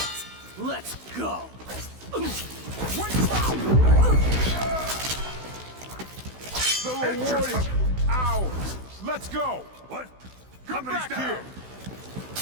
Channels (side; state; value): left; late; 16 ms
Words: Let's go! The reward is ours! Let's go! What? Come Company's back down. here!